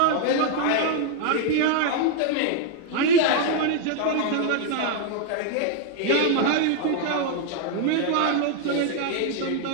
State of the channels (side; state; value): both; different; correlation 0.00